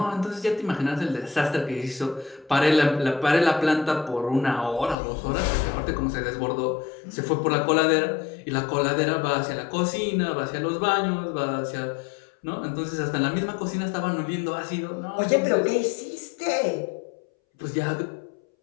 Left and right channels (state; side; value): drops out; right; at 5.0 s